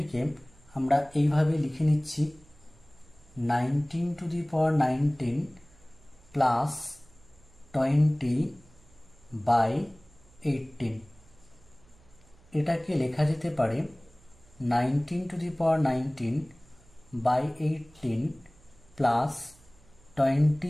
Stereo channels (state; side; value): noise; right; hum, 28 dB below the sound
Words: আমরা এইভাবে লিখে নিচ্ছি, 19⁻19 প্লাস 20/18। এটাকে লেখা যেতে পারে 19⁻19/18 প্লাস